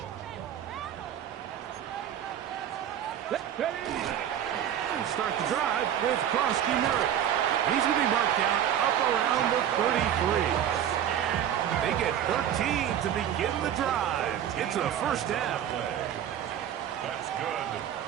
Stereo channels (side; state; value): left; quieter; 10.2 dB